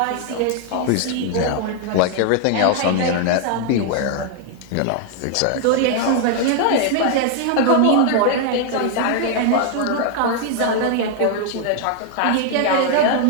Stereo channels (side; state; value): both; different; correlation 0.00